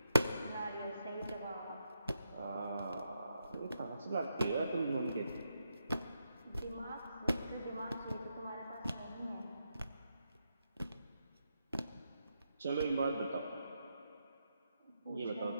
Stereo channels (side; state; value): both; inverted; correlation -0.83